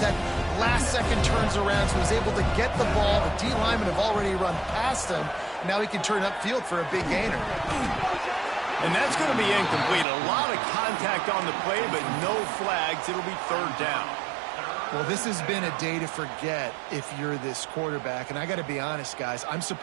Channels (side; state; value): left; drops out; at 10.1 s